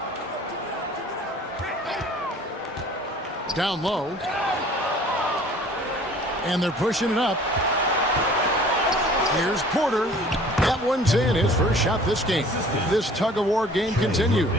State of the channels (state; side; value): normal; both; correlation 0.50